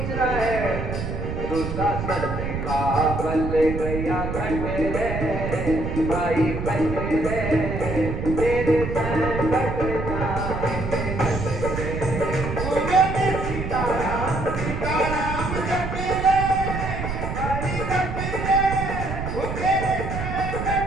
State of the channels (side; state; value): right; noise; rumble, 4 dB below the sound